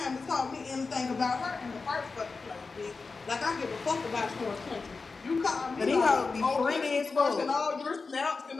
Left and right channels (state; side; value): quieter; right; 4.3 dB